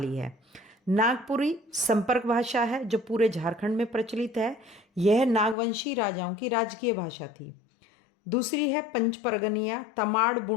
है। नागपुरी संपर्क भाषा है जो पूरे झारखंड में प्रचलित है। यह नागवंशी राजाओं की राजकीय भाषा थी। दूसरी है पंच परगनिया, तमाड़,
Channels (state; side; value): drops out; right; at 5.6 s